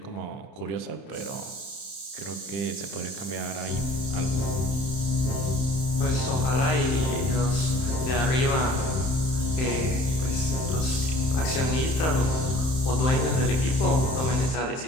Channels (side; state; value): right; late; 31 ms